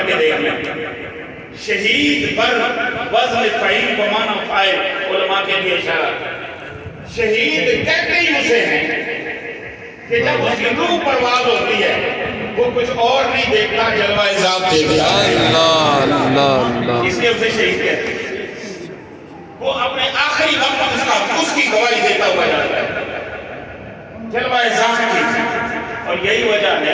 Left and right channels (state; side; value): identical; both; correlation 1.00